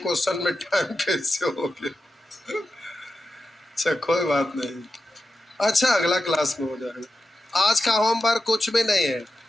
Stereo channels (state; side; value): normal; both; correlation 0.91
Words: में टाइम कैसे हो गया। अच्छा कोई बात नहीं, अच्छा अगला क्लास में हो जाएगा। आज का होमवर्क कुछ भी नहीं है,